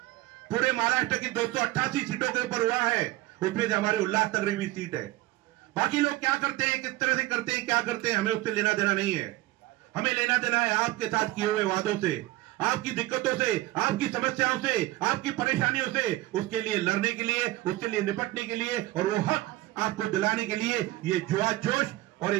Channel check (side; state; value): left; quieter; 18.0 dB